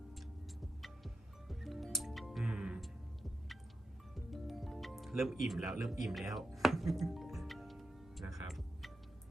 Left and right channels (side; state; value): both; normal; correlation 0.88